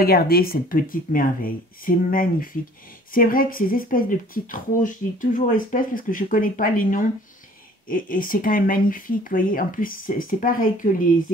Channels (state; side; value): normal; both; correlation 0.52